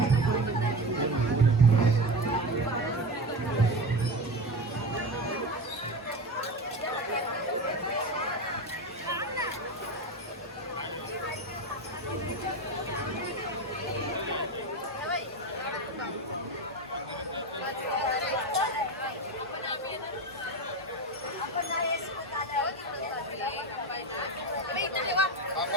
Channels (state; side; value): normal; both; correlation 0.22